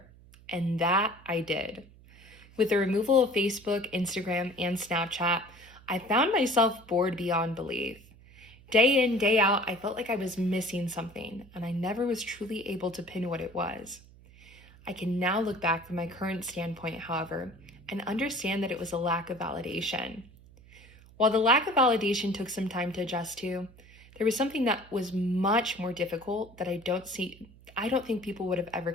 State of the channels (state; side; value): noise; right; hum, 23 dB below the sound